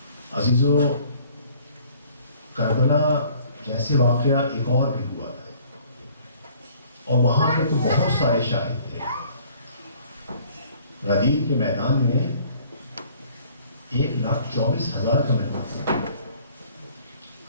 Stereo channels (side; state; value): both; inverted; correlation -0.56